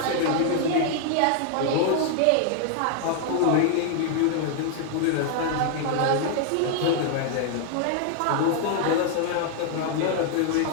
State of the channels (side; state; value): both; different; correlation 0.00